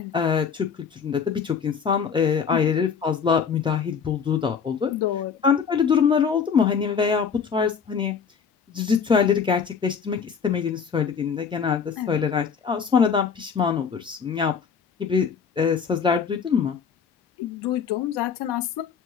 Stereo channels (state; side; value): quieter; right; 6.5 dB